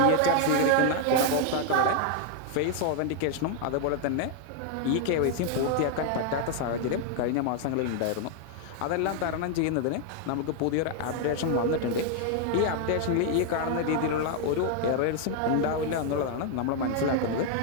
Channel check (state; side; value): different; both; correlation 0.00